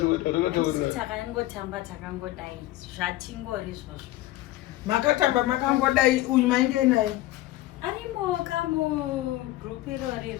Takangotamba takangodai zvatingori izvozvo. Makatamba makangodai uyu mainge naye. Arimo kamu group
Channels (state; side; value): quieter; right; 16.5 dB